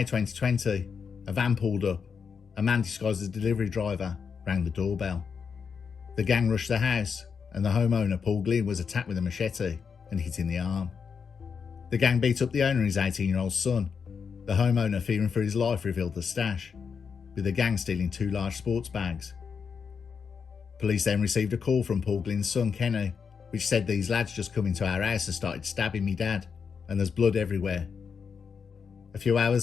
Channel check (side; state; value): right; quieter; 6.1 dB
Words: 2020, a van pulled up. A man disguised as a delivery driver rang the doorbell. The gang rushed the house and the homeowner, Paul Glynn, was attacked with a machete and hit in the arm. The gang beat up the owner and his 18-year-old son. The homeowner, fearing for his life, revealed the stash, with the gang stealing 2 large sports bags. Police then received a call from Paul Glynn's son, Kenny, which said these lads just come into our house and started stabbing me dad, and there's blood everywhere. A few